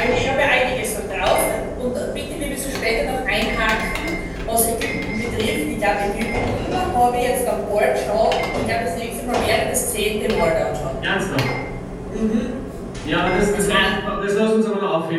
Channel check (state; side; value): identical; both; correlation 1.00